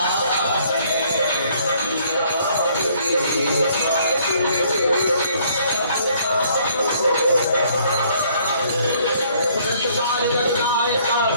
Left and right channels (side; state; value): both; inverted; correlation -0.63